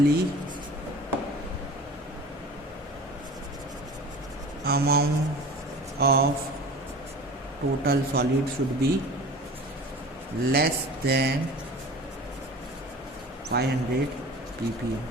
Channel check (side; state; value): both; normal; correlation 0.39